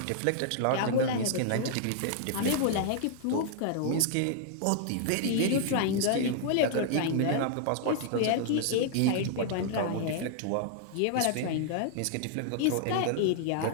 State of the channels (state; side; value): different; both; correlation -0.01